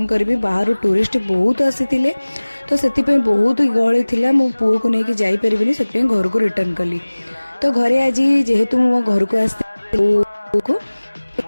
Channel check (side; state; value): both; inverted; correlation -1.00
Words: करी बाहर टूरिस्ट बहुत आसी तो से बहुत गहली थिला मो पुओ को लेकिन जापरि से घर को रिटर्न कली तो घरे आज जेहेतु मो घर को